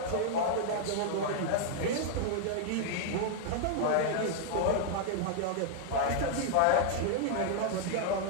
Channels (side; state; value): both; different; correlation -0.01